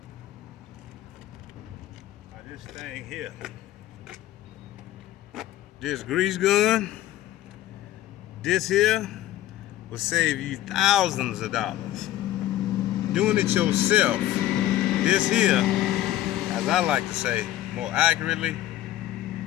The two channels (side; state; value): right; quieter; 14.0 dB